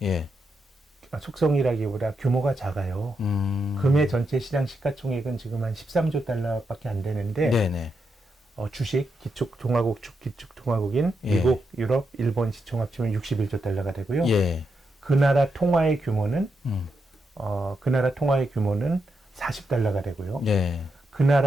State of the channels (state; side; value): normal; both; correlation 0.84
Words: 예. 속성이라기보다 규모가 작아요. 금의 전체 시장 시가총액은 지금 한 13조 달러밖에 안 되는데 네네. 주식, 기축통화국인 예. 미국, 유럽, 일본 시총 합치면 61조 달러가 되고요. 예. 그 나라 통화의 규모는 음. 40달러가 되고요. 예. 그